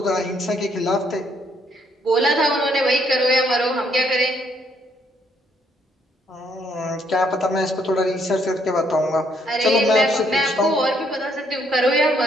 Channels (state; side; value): normal; both; correlation 0.70